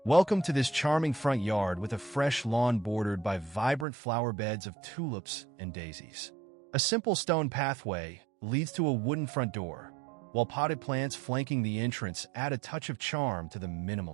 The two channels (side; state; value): left; drops out; at 3.9 s